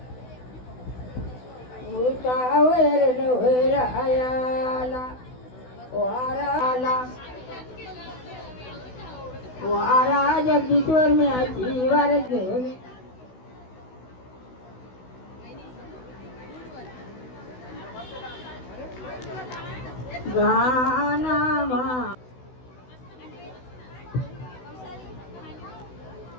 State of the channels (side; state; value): right; late; 16 ms